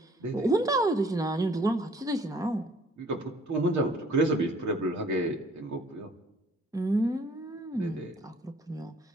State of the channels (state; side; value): normal; both; correlation 0.58